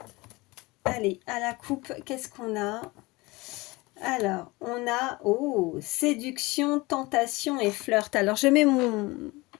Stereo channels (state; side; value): quieter; right; 22.8 dB